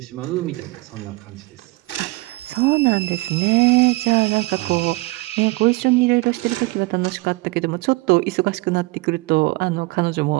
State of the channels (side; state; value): left; quieter; 22.2 dB